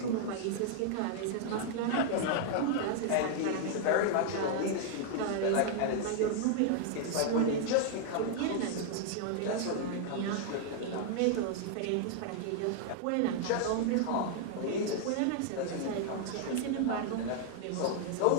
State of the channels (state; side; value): different; both; correlation 0.00